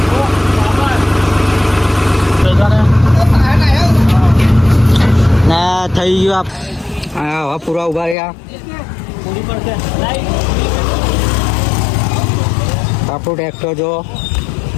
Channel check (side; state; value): right; drops out; at 8.2 s